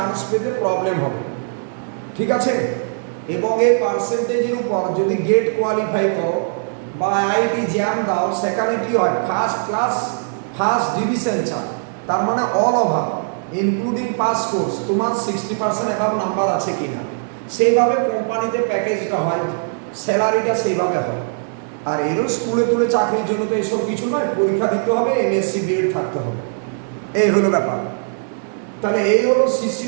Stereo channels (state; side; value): silent; left; digital silence